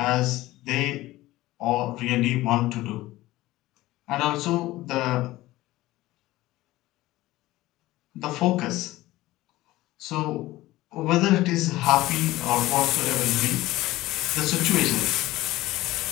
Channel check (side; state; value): right; quieter; 17.5 dB